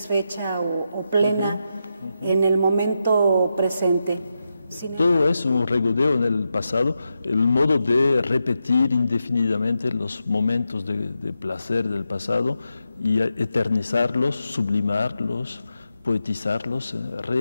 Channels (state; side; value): inverted; both; correlation -0.87